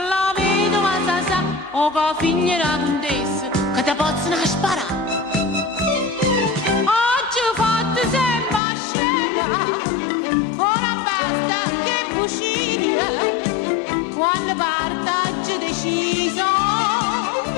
la vedova sa, o con la figlia della contessa, che ti possono sparare. Quando partaggio deciso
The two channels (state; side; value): drops out; right; at 8.6 s